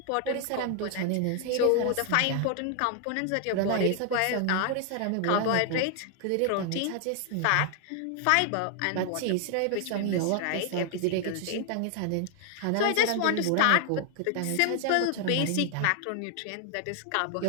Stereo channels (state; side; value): different; both; correlation 0.00